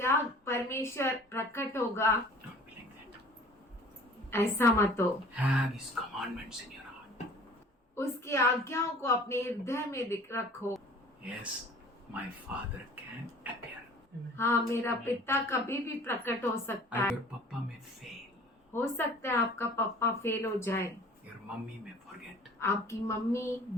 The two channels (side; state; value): both; normal; correlation 0.48